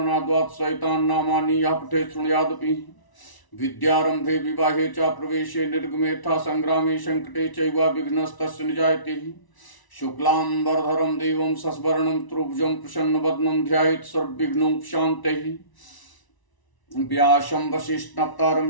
सहितान् नामानि यः पठेत् शृणुयादपि विद्यारम्भे विवाहे च प्रवेशे निर्गमेऽथा संग्रामे संकटे चैव विघ्नस्तस्य निजायते शुक्लाम्बरधरं देवं शशिवर्णं त्रिभुजं प्रसन्नवदनं ध्यायेत् सर्वविघ्नोपशान्तये व्यासं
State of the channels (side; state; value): right; late; 1.0 ms